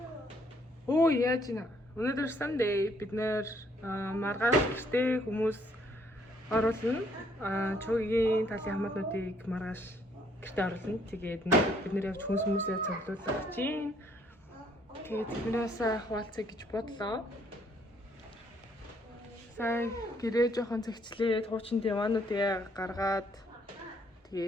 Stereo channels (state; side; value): normal; both; correlation 0.67